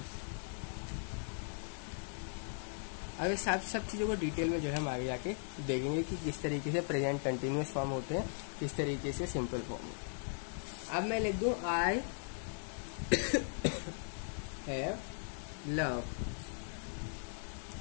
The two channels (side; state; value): right; silent; digital silence